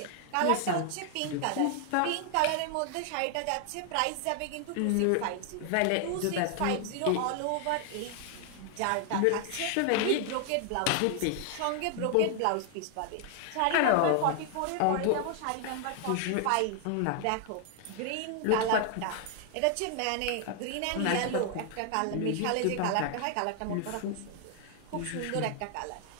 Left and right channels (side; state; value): both; different; correlation 0.00